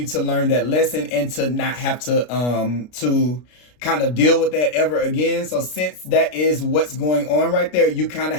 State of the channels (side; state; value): right; late; 33 ms